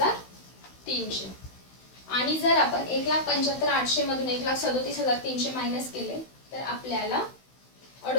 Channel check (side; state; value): right; late; 16 ms